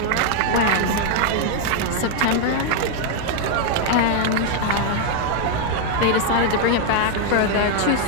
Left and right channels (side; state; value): both; different; correlation 0.00